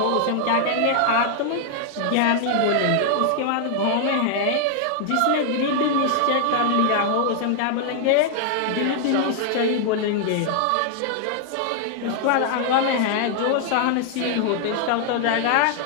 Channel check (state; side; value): different; both; correlation 0.00